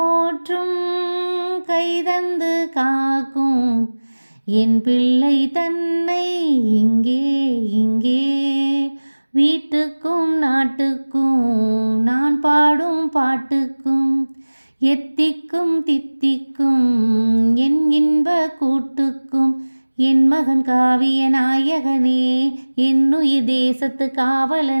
கைதந்து காக்கும், என் பிள்ளை தன்னை இங்கே இங்கே. வீட்டுக்கும் நாட்டுக்கும் நான் பாடும் பாட்டுக்கும், எத்திக்கும் தித்திக்கும் என் இன்ப கூட்டுக்கும். என் மகன் காவிய நாயகனே, என்னுயிர் தேசத்து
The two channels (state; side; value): inverted; both; correlation -1.00